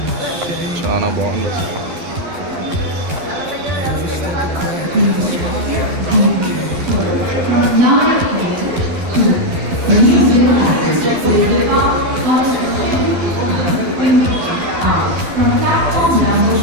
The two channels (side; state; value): left; late; 12 ms